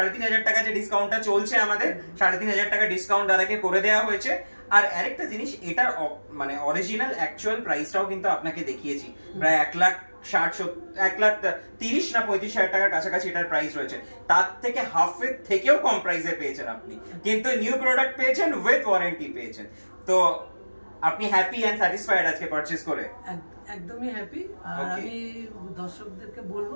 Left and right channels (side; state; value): both; inverted; correlation -1.00